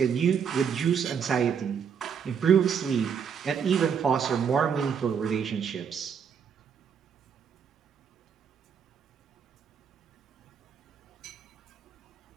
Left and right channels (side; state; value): left; quieter; 7.2 dB